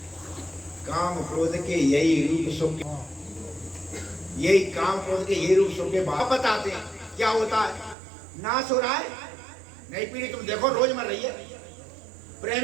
काम क्रोध के यही रूप सुख, यही काम क्रोध के यही रूप सुख के बाप बताते हैं क्या होता है। नाश हो रहा है, नई पीढ़ी तुम देखो रोज मर रही है।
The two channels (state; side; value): drops out; left; at 8.0 s